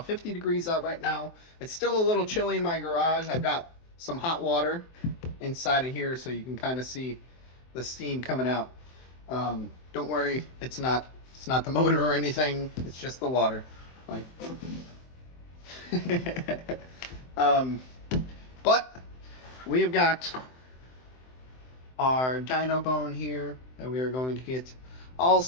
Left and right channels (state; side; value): late; right; 23 ms